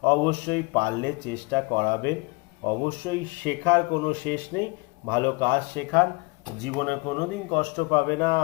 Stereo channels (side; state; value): right; quieter; 27.0 dB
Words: অবশ্যই পারলে চেষ্টা করাবেন। অবশ্যই শেখার কোনো শেষ নেই, ভালো কাজ শেখান, জীবনে কোনোদিন কষ্ট পাবে না।